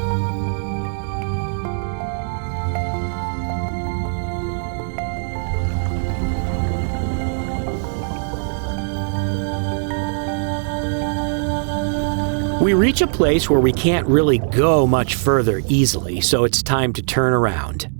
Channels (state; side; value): silent; left; digital silence